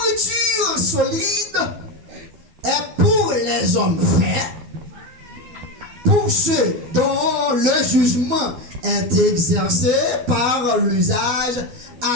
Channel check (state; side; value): late; left; 12 ms